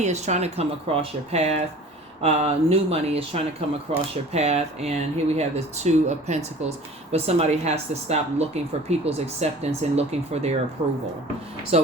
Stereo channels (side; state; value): both; normal; correlation 0.44